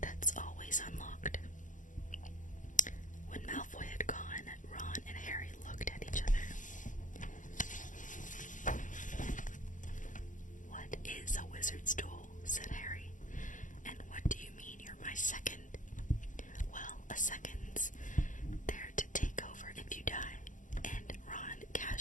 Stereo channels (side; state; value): right; late; 0.37 ms